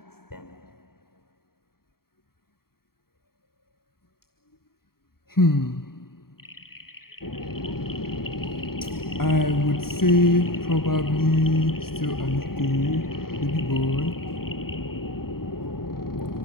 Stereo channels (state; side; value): late; right; 0.94 ms